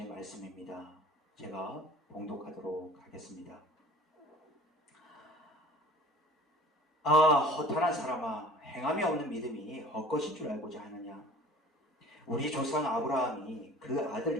말씀입니다. 제가 봉독하도록 하겠습니다. 허탄한 사람아, 행함이 없는 믿음이 헛것인 줄 알고자 하느냐? 우리 조상 아브라함이 그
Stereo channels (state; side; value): normal; both; correlation 0.45